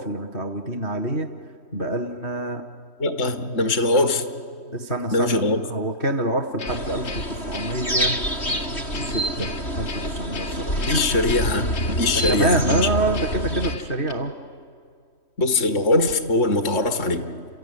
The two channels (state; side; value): late; right; 3.1 ms